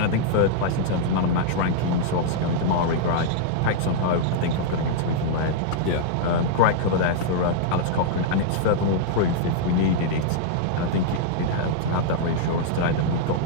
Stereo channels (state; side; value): different; both; correlation -0.01